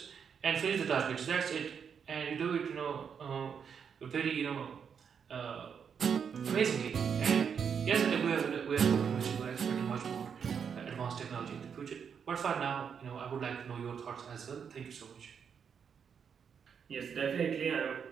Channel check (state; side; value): quieter; left; 7.0 dB